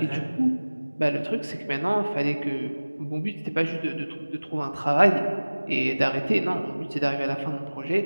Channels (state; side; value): inverted; both; correlation -1.00